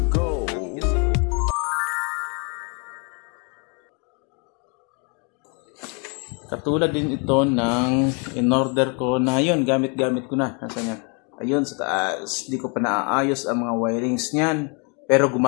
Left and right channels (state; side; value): quieter; right; 35.3 dB